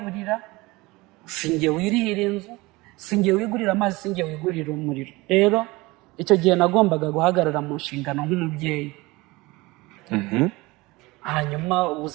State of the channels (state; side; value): quieter; left; 22.1 dB